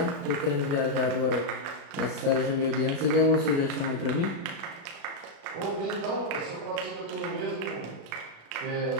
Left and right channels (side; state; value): left; late; 36 ms